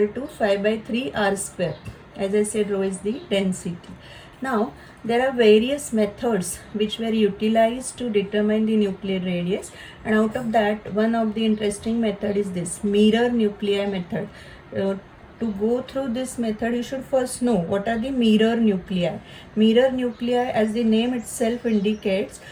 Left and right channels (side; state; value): both; identical; correlation 1.00